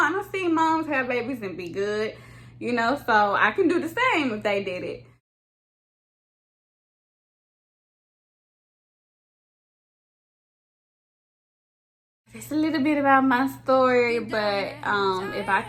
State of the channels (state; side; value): identical; both; correlation 1.00